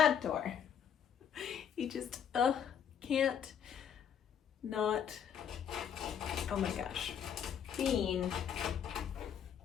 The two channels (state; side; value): quieter; right; 8.4 dB